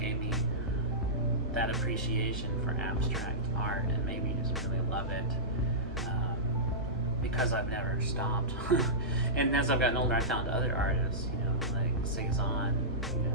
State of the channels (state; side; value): normal; both; correlation -0.17